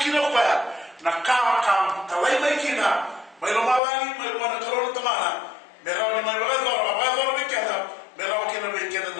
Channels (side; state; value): right; drops out; at 3.8 s